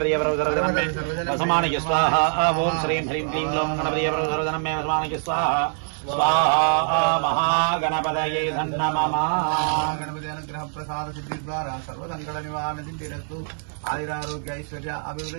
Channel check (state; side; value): silent; left; digital silence